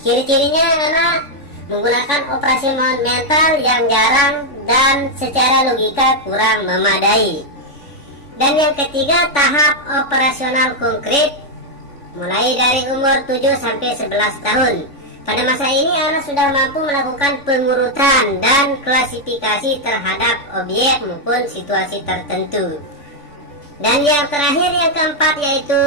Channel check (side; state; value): right; late; 3.5 ms